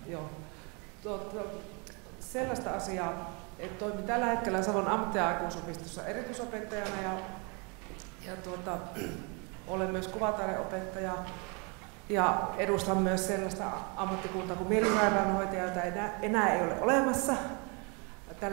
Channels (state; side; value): quieter; left; 32.9 dB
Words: joo. Sellaista asiaa, että toimin tällä hetkellä Savon ammatti- ja aikuisopistossa erityisopettajana ja olen myös kuvataideopettaja ja edustan myös sellaista ammattikuntaa kuin mielisairaanhoitaja, jota enää ei ole olemassa